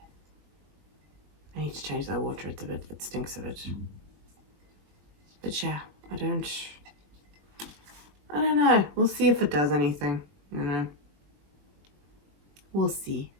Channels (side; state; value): left; late; 21 ms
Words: I need to change that water, it stinks of it. But yeah, I don't know. We'll see if it does anything, you know. We'll see.